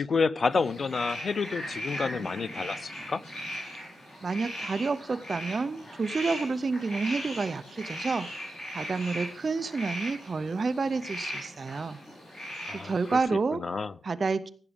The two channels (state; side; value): normal; both; correlation 0.88